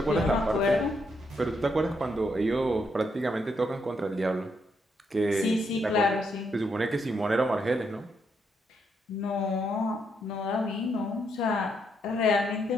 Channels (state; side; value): normal; both; correlation 0.77